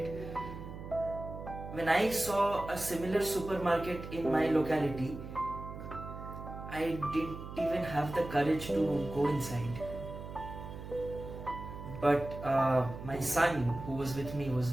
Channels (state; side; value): noise; right; hum, 10 dB below the sound